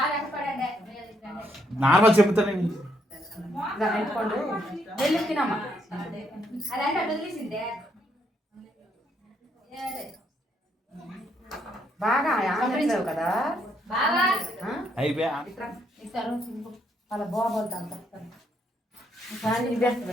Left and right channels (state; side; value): normal; both; correlation 0.74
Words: నార్మల్ చెప్తాను పెట్టుకోండు. వెళ్ళి తినమ్మా. బాగా ఆనందించావు కదా. అయిపోయా అలా బాగోద్దు అంత ఇదేస్తుంది